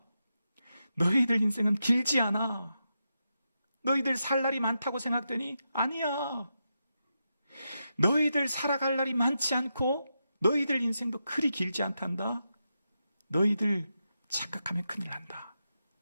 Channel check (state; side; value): inverted; both; correlation -0.87